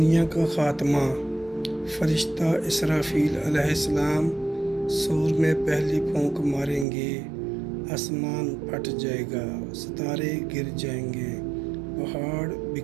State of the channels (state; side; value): drops out; left; at 6.9 s